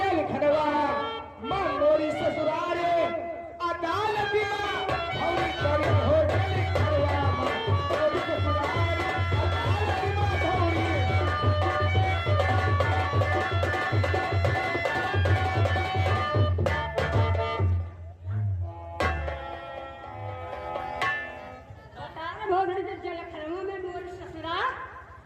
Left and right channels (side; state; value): both; identical; correlation 1.00